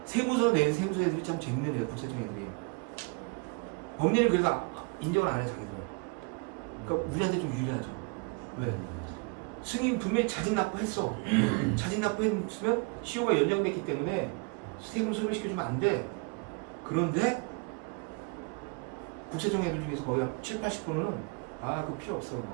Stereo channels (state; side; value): quieter; left; 31.5 dB